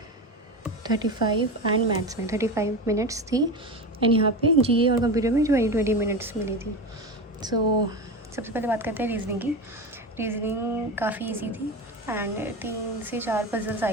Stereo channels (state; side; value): normal; both; correlation 0.24